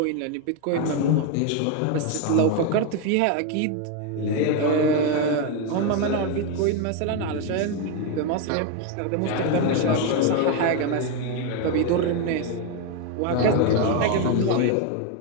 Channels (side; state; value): both; different; correlation 0.01